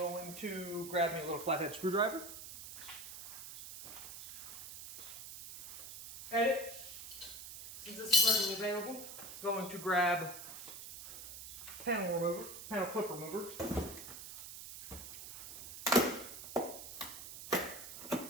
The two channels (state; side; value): noise; right; hiss, 11 dB below the sound